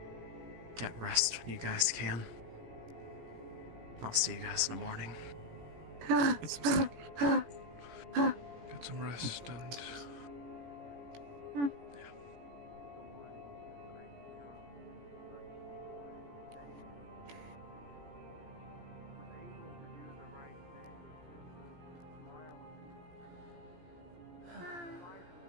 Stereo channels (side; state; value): left; late; 17 ms